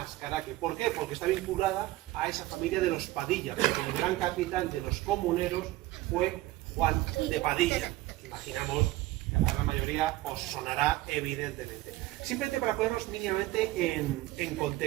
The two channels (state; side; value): quieter; left; 17.4 dB